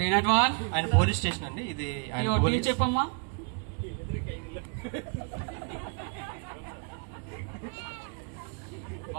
ఆయన పోలీస్ స్టేషన్ అండి. ఇది చెప్పమ్మా.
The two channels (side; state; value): left; quieter; 37.4 dB